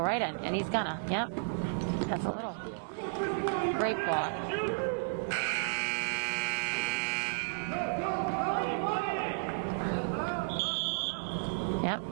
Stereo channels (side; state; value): left; silent; 56 dB below the other